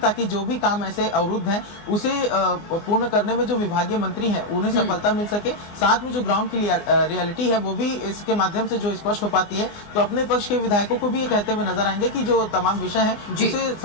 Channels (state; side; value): late; right; 24 ms